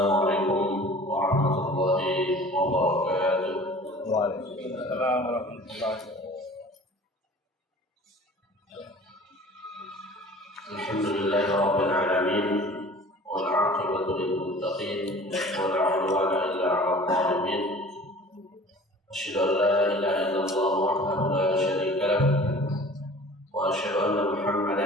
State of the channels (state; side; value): normal; both; correlation 0.45